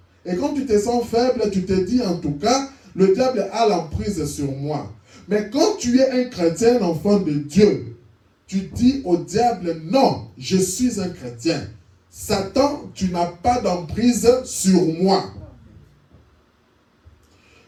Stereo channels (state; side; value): identical; both; correlation 1.00